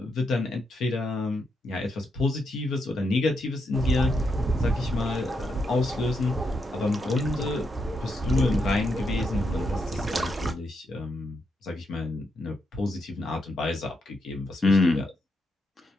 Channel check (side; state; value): both; normal; correlation 0.81